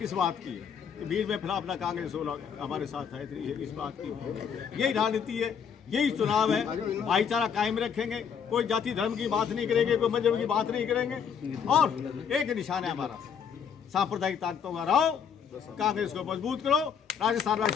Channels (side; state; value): right; quieter; 7.3 dB